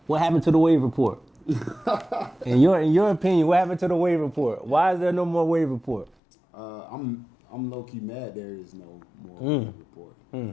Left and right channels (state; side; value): drops out; right; at 6.1 s